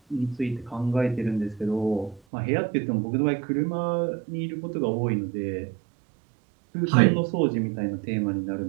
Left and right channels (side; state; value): left; drops out; at 2.2 s